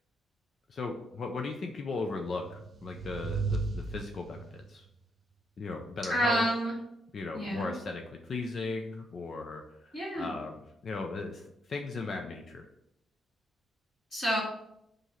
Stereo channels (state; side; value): normal; both; correlation 0.76